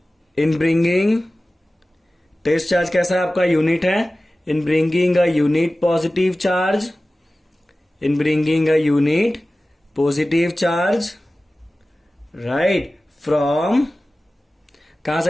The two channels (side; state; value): both; normal; correlation 0.96